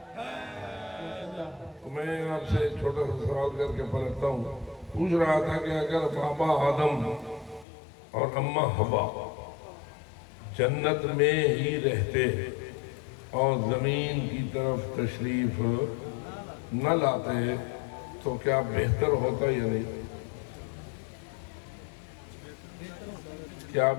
میں آپ سے چھوٹا سا سوال کر کے پلٹتا ہوں. پوچھ رہا تھا کہ اگر بابا آدم اور اماں حوا جنت میں ہی رہتے اور زمین کی طرف تشریف نہ لاتے تو کیا بہتر ہوتا یا نہیں؟ کیا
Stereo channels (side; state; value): right; drops out; at 7.7 s